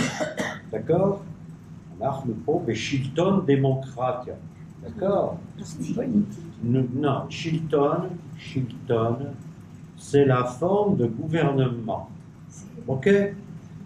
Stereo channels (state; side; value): identical; both; correlation 1.00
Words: d'accord? אנחנו פה בשלטון דמוקרטיה, d'accord? Non, שלטון, c'est la forme de gouvernement. Ok?